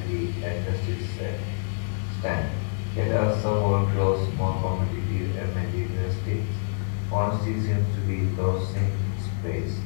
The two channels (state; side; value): silent; right; 61 dB below the other